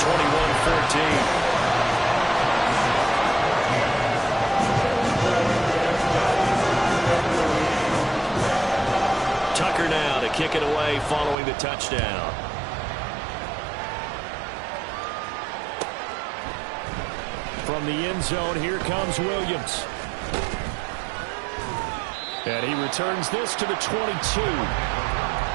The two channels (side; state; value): left; drops out; at 11.4 s